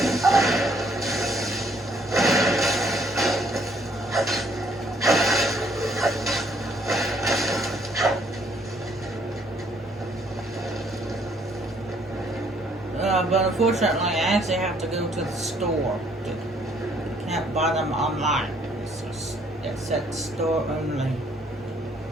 But unfortunately, I actually have to go to the store. Can't buy them online. It's at store only.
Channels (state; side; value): normal; both; correlation 0.65